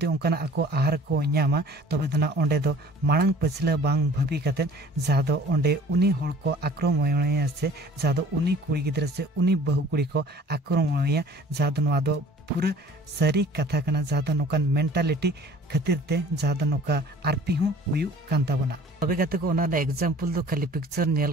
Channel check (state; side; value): normal; both; correlation 0.49